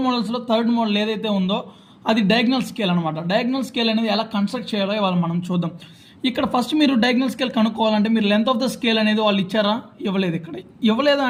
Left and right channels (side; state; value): both; identical; correlation 1.00